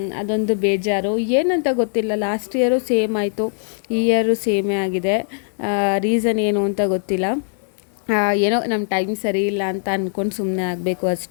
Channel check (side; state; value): right; silent; digital silence